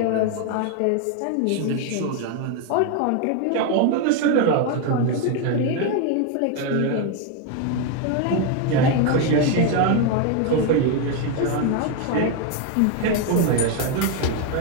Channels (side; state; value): both; different; correlation 0.01